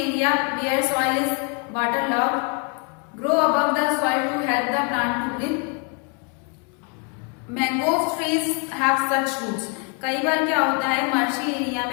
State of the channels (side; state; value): right; quieter; 36.2 dB